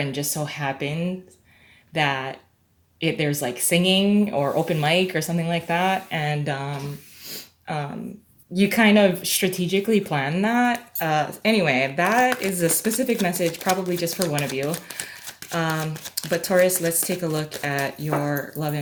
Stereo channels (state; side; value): identical; both; correlation 1.00